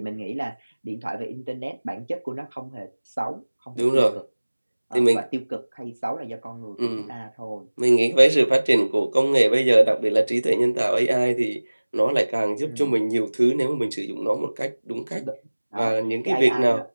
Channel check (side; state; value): both; inverted; correlation -1.00